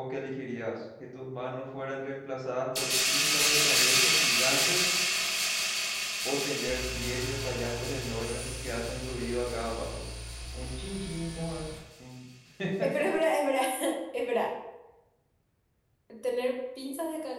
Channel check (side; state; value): both; identical; correlation 1.00